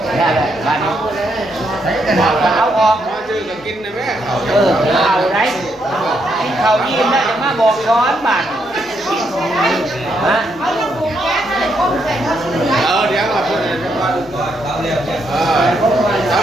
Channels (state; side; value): normal; both; correlation 0.77